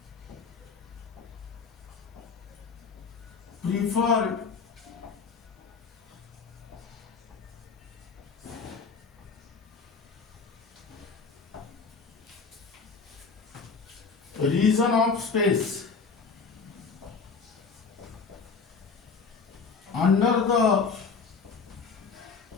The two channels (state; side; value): quieter; right; 5.1 dB